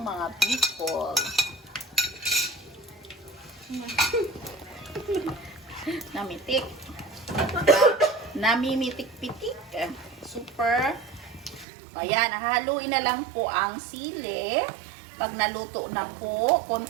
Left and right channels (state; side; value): drops out; left; at 11.7 s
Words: mga Bicol. Namitik. Namimitik-pitik. Super. Ayan, haluin na lang po ang sili. Pag naluto na po,